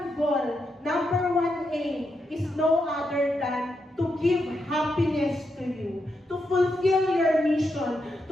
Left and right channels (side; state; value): both; normal; correlation 0.83